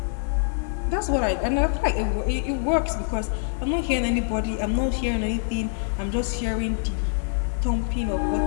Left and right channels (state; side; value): silent; right; 62 dB below the other